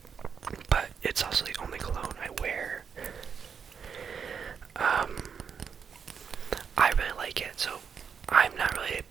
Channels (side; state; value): left; quieter; 6.7 dB